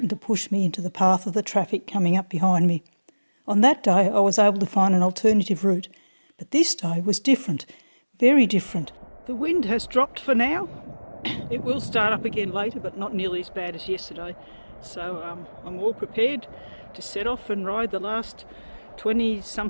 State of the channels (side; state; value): both; inverted; correlation -1.00